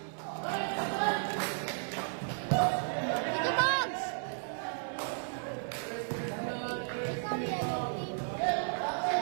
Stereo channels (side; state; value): left; silent; 55 dB below the other